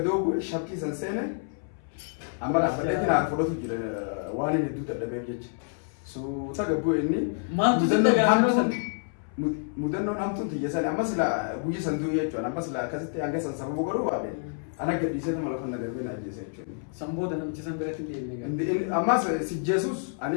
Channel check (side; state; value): right; silent; 59 dB below the other